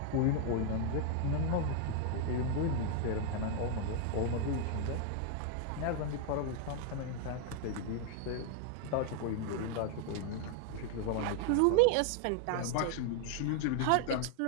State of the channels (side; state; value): both; different; correlation 0.00